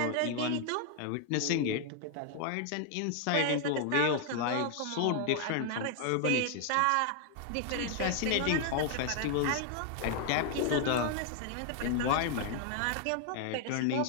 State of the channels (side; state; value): both; different; correlation 0.00